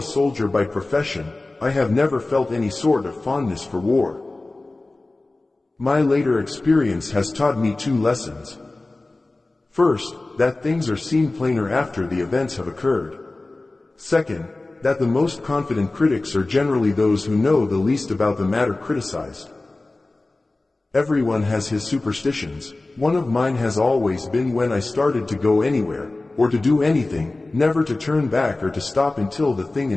soldier by profession, I have never felt any sort of fondness for war. My later experience has taught me two lessons. First, that things are seen plainer after the events have occurred. Second, that the most confident critics are generally those who know the least about the matter criticized. Everyone has his superstitions. One of mine has always been when I started to go anywhere, or to do anything, never to turn back or to stop until the thing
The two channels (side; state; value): right; quieter; 3.0 dB